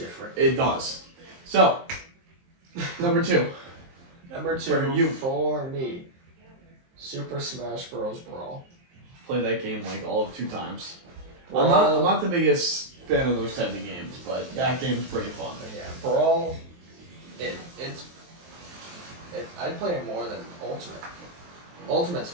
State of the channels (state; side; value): late; left; 23 ms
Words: It does. So, number 2. Number 2 For you. for me, Super Smash Bros. Brawl. Played that game like all of 2 times. Brawl. I'm not the biggest fan of those type of games, but that game's pretty fun. Yeah, Brawl. I'd play it more than Ultimate. Ultimate's